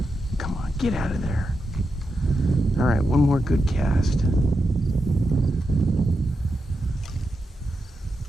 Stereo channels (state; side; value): normal; both; correlation 0.87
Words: Come on, get out of there. All right, one more good cast.